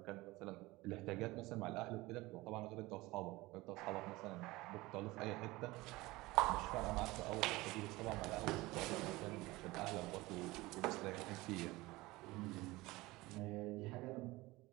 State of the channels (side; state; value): left; quieter; 20.5 dB